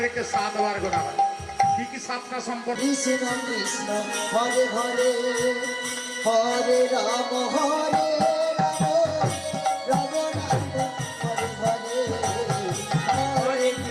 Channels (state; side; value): identical; both; correlation 1.00